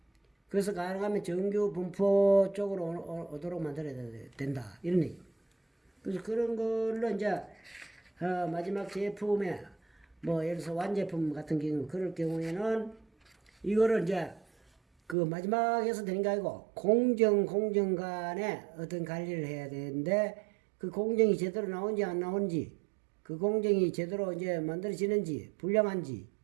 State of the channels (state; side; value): drops out; left; at 15.2 s